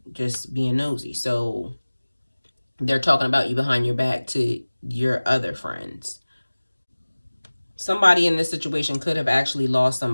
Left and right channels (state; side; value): inverted; both; correlation -1.00